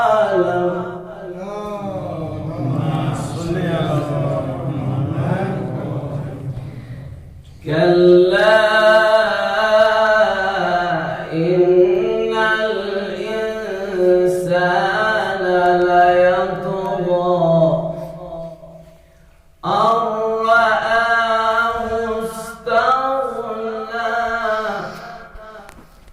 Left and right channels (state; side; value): identical; both; correlation 1.00